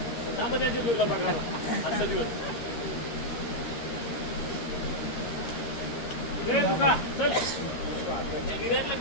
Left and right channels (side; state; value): right; late; 13 ms